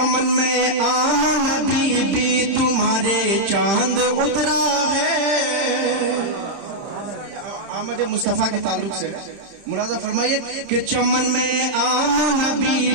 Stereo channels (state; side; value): late; left; 31 ms